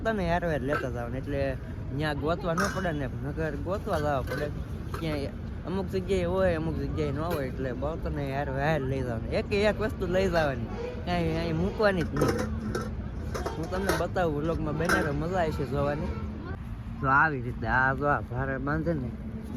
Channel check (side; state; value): both; identical; correlation 1.00